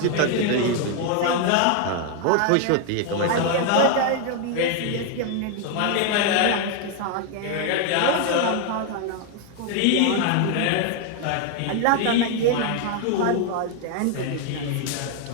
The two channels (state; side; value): different; both; correlation 0.00